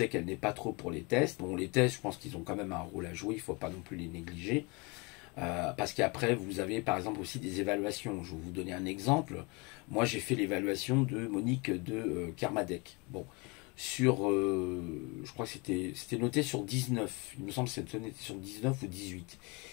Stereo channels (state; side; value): quieter; right; 28.5 dB